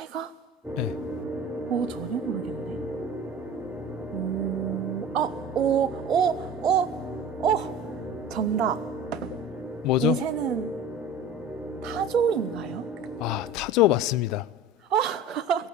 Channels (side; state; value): both; normal; correlation 0.37